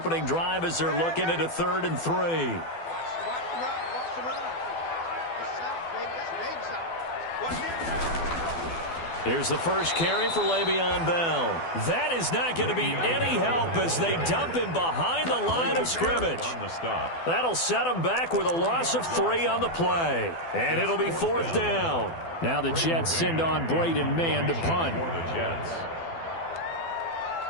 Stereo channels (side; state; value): right; late; 12 ms